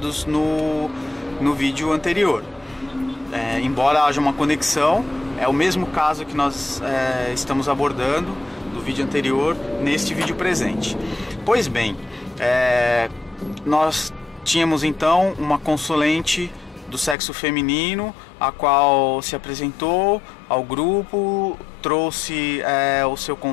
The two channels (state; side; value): drops out; right; at 17.2 s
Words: no vídeo anterior. Embora haja uma conexão, é o mesmo caso que nós estamos abordando do vídeo anterior neste vídeo presente. Pois bem, nós tínhamos então uma consulente do sexo feminino, a qual se apresentou ao grupo, trouxe o seu